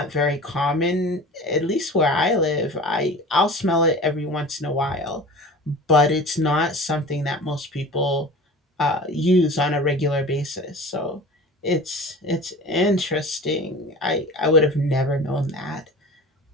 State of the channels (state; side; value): normal; both; correlation 0.38